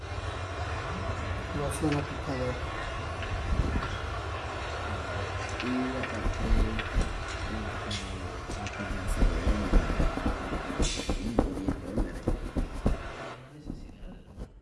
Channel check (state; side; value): identical; both; correlation 1.00